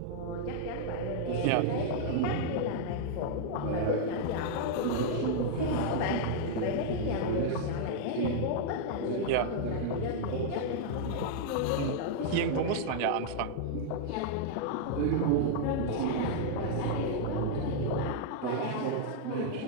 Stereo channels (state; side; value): different; both; correlation -0.01